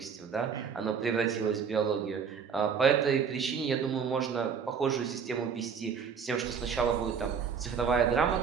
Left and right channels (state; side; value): quieter; left; 6.5 dB